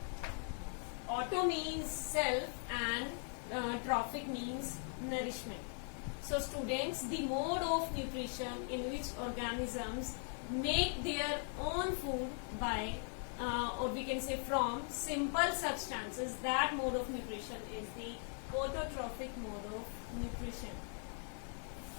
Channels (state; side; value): silent; right; 51 dB below the other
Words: Auto means self and trophic means nourishment. So students, the mode of nutrition in which organisms make their own food by or we can say from simple substances, that mode of nutrition is the autotrophic mode of nutrition.